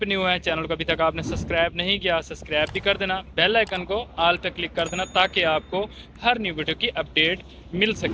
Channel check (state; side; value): identical; both; correlation 1.00